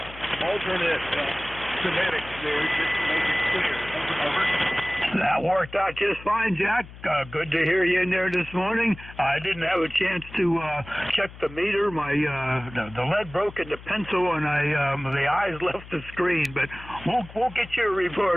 Alternate Semitic there, just to make it clear. Over. That worked out just fine, Jack. Good to hear you in there this morning. I didn't have a chance to check the meter. My the lead broke in the pencil, and the eyes left the screen. But we'll get you a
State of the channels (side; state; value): left; noise; hum, 17 dB below the sound